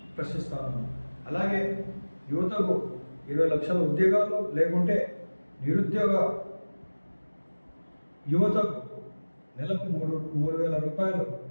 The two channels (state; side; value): inverted; both; correlation -1.00